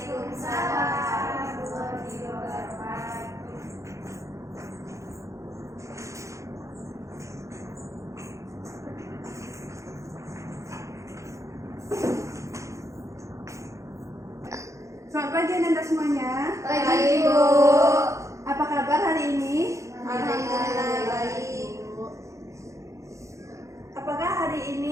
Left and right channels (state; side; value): late; left; 0.15 ms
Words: warahmatullahi wabarakatuh. Selamat pagi Anda semuanya. Pagi, Bu. Apa kabar hari ini? Alhamdulillah baik. Apakah hari